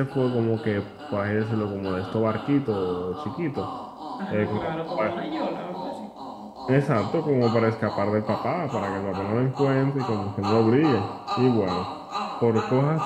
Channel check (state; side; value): identical; both; correlation 1.00